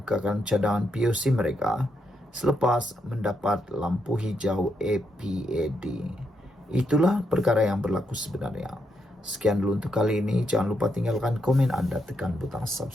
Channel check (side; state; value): both; normal; correlation 0.80